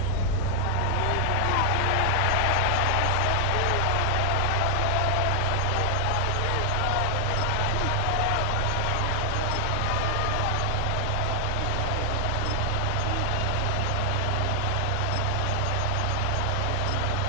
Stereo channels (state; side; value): different; both; correlation 0.00